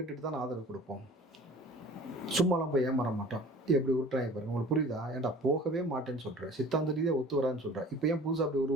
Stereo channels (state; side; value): normal; both; correlation 0.45